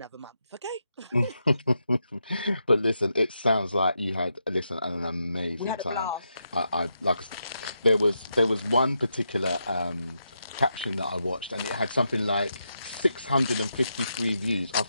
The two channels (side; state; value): both; inverted; correlation -0.84